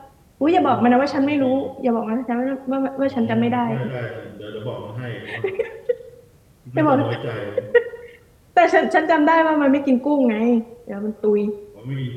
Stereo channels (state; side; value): identical; both; correlation 1.00